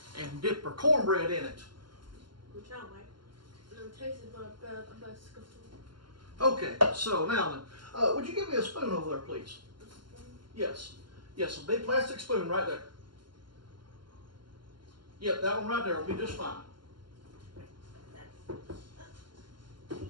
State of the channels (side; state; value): left; late; 0.72 ms